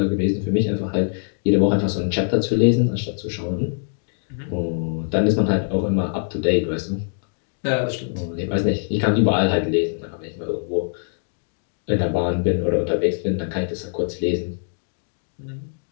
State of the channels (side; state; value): right; silent; 64 dB below the other